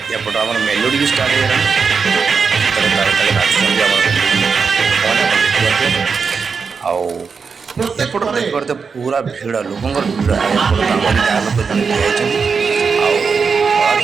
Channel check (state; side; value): quieter; left; 5.4 dB